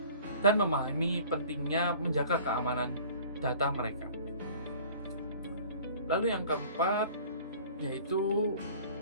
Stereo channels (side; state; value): both; inverted; correlation -0.48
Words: dan memahami pentingnya menjaga keamanan data mereka. Lalu yang keempat yaitu